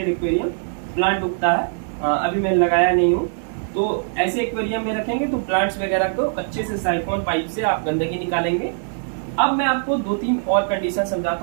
एक्वेरियम, प्लांट उगता है, अभी मैं लगाया नहीं हूँ। तो ऐसे एक्वेरियम में रखेंगे तो प्लांट्स वगैरह को अच्छे से साइफोन पाइप से आप गंदगी निकालेंगे। अब मैं आपको 2-3 और कंडीशन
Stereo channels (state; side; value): silent; left; digital silence